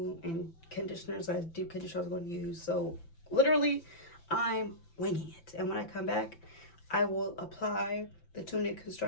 and conditioners, deep conditioner I was going to use. So literally, I'm winging it. And when I come back, I will apply the 2-minute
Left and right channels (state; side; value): late; right; 5.9 ms